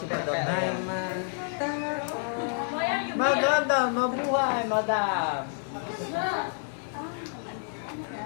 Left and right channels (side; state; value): right; silent; 57 dB below the other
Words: Madam. Ay, mata. Maganda, mabuhay, madam.